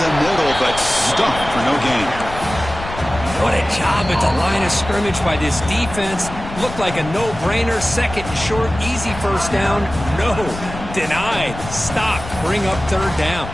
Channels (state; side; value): noise; left; rumble, 11 dB below the sound